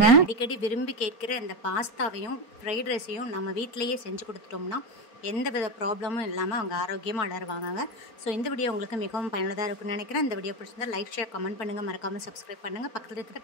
அடிக்கடி விரும்பி கேட்கிற இந்த பாஸ்தாவையும் ஃப்ரைட் ரைஸையும் நம்ம வீட்டிலேயே செஞ்சு கொடுத்துட்டோம்னா எந்த வித ப்ராப்ளமும் இல்லாமல் அவங்க ஆரோக்கியமாக வளருவாங்க. ஸோ இந்த வீடியோ உங்களுக்கு மிகவும் பயனுள்ளதாக இருக்குன்னு நினைக்கிறேன். இந்த வீடியோ பிடிச்சிருந்தா லைக், ஷேர், கமெண்ட் பண்ணுங்கள். மறக்காமல் சப்ஸ்கிரைப் பண்ணுங்கள். பக்கத்தில் இருக்கிற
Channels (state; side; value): late; right; 4.4 ms